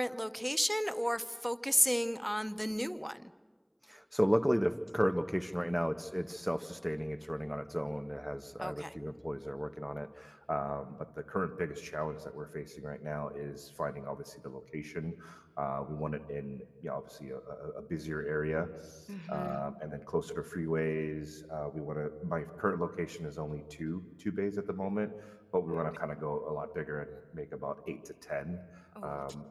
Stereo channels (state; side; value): identical; both; correlation 1.00